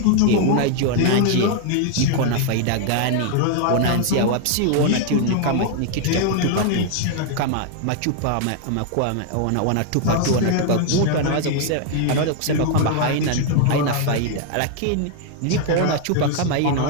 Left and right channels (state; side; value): different; both; correlation 0.00